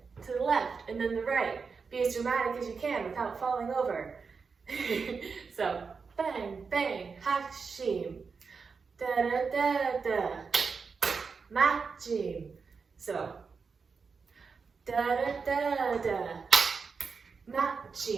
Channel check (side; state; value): left; quieter; 5.2 dB